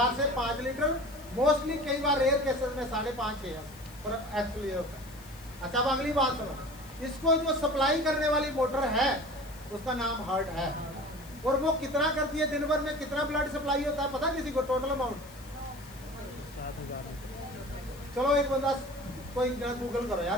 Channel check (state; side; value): noise; left; hiss, 22 dB below the sound